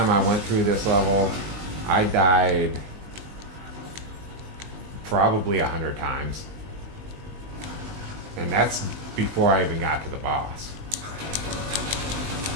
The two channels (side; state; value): left; late; 19 ms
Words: I went through this level, I died probably 100 times. And that's before I even got to the boss.